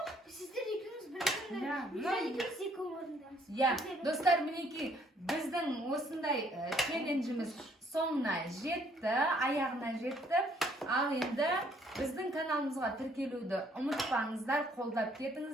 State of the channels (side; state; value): both; normal; correlation 0.64